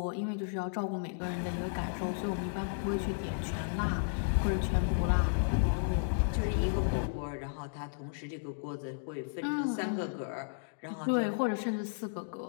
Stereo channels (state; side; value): silent; right; digital silence